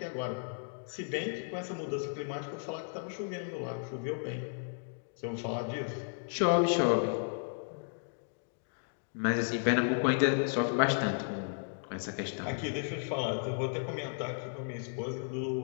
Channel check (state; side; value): silent; right; digital silence